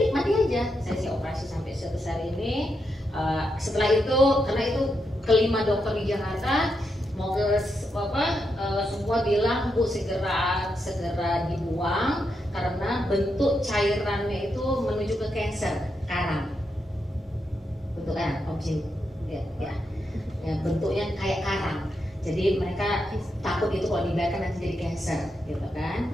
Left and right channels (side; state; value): both; normal; correlation 0.83